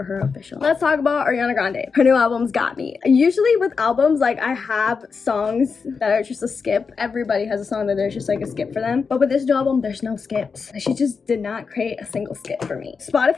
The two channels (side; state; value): right; quieter; 5.3 dB